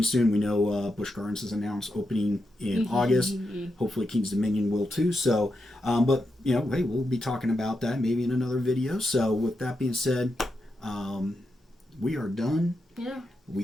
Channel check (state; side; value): normal; both; correlation 0.86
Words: soon. We know Busch Gardens has announced opening in August. Hopefully, Kings Dominion will too. So, but hey, we'll be talking about that maybe in another video. So, with that being said, we are done. Yeah. We